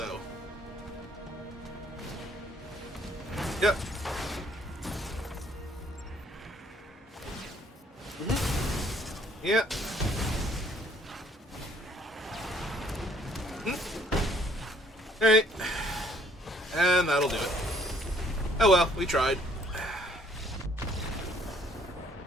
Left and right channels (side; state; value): both; normal; correlation 0.62